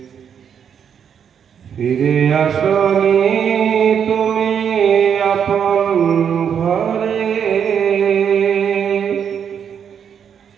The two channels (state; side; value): quieter; left; 7.9 dB